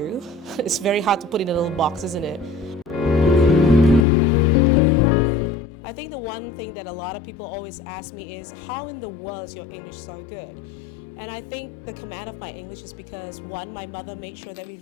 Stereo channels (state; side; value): drops out; right; at 4.0 s